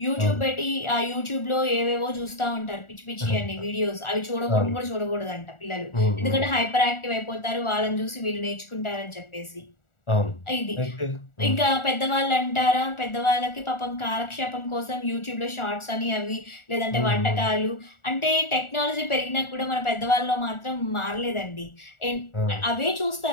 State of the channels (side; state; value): right; late; 1.4 ms